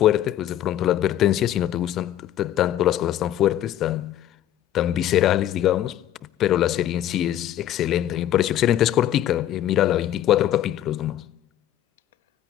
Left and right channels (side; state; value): right; quieter; 12.1 dB